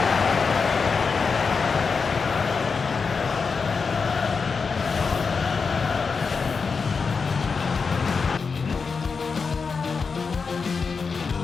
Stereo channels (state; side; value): quieter; right; 5.1 dB